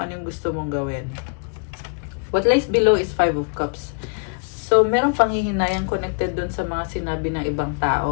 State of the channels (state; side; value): quieter; right; 38.3 dB